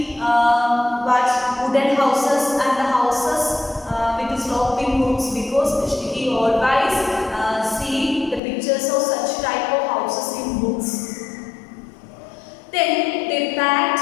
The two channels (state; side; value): drops out; right; at 8.4 s